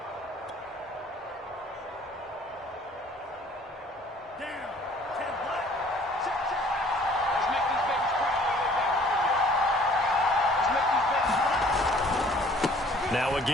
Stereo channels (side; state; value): both; normal; correlation 0.55